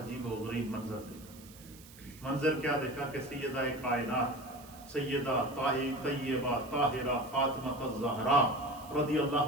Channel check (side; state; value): right; noise; hiss, 20 dB below the sound